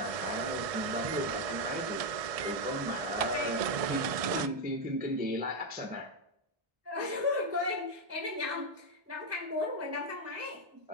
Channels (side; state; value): left; late; 1.6 ms